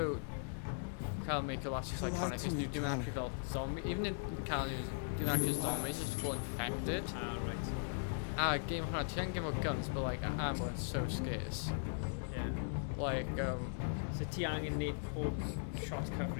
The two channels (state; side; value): silent; right; digital silence